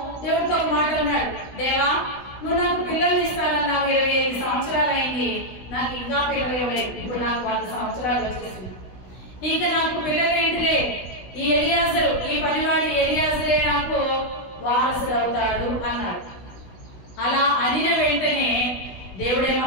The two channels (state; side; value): late; right; 16 ms